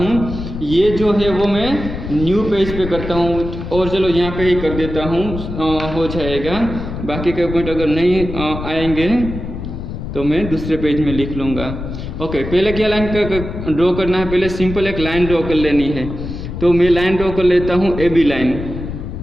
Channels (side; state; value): left; noise; rumble, 8 dB below the sound